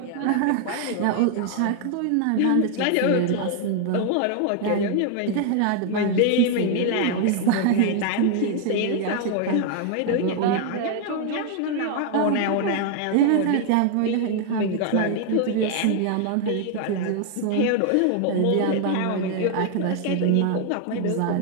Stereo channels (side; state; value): both; different; correlation 0.00